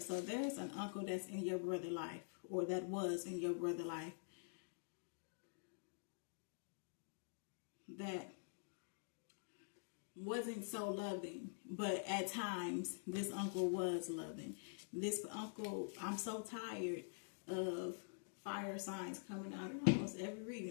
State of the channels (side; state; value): right; silent; digital silence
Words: there's an uncle that's in your brother's life, or that was in your brother's life, that wasn't so loving, but at times this uncle was loving. This uncle, I'm so tired of fire signs coming out in almost every